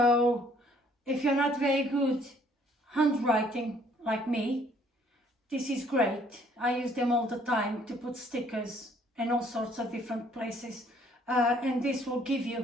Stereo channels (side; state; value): both; normal; correlation 0.62